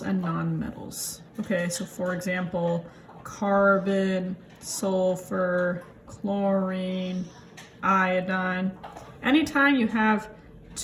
and nonmetals. Okay, so for example, carbon, sulfur, chlorine, iodine. Anytime you have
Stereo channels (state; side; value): identical; both; correlation 1.00